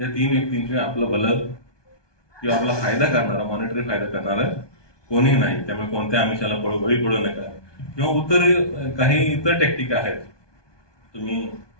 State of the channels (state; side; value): late; right; 1.2 ms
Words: 3 व्यक्तींचे आपलं भलं किंवा आपला फायदा करणारा, मॉनिटरी फायदा करणारा कोणी नाही. त्यामुळे कोणत्या आमिषाला बळी पडू नका. किंवा काही इतर टेक्निक आहेत.